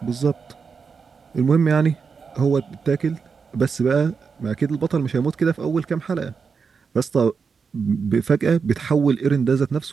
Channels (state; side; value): quieter; left; 5.6 dB